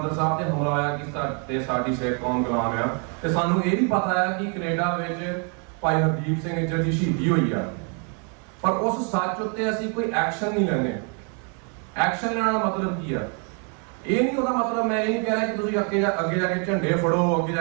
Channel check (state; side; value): quieter; left; 38.8 dB